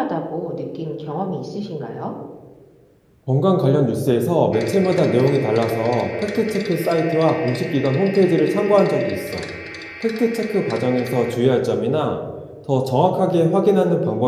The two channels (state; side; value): identical; both; correlation 1.00